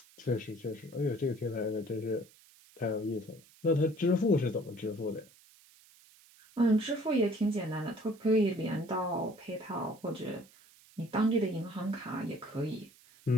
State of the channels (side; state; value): right; noise; hiss, 26 dB below the sound